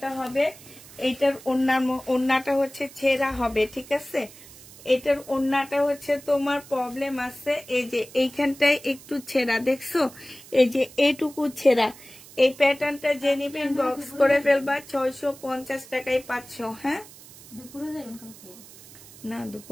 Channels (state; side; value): noise; right; hiss, 19 dB below the sound